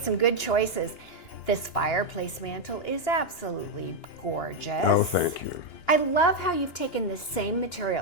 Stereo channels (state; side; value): late; right; 2.9 ms